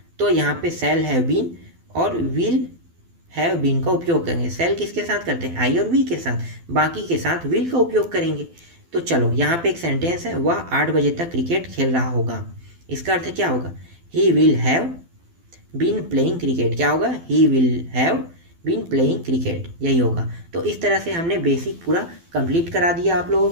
तो यहाँ पे शैल हैव बीन और विल हैव बीन का उपयोग करेंगे। शैल किसके साथ करते हैं, आई और वी के साथ, बाकी के साथ विल का उपयोग करेंगे। तो चलो यहाँ पे एक सेंटेंस है, वह 8 बजे तक क्रिकेट खेल रहा होगा। इसका अर्थ क्या होगा, he will have been playing cricket. क्या होगा, he will have been playing cricket, यही होगा। तो इस तरह से हमने बेसिक पूरा कंप्लीट करा दिया आप लोगों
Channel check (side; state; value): left; late; 12 ms